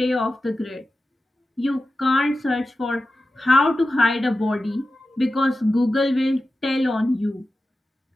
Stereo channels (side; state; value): both; normal; correlation 0.93